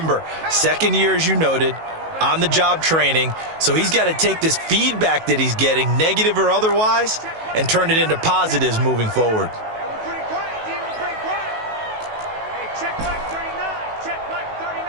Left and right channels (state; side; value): late; left; 19 ms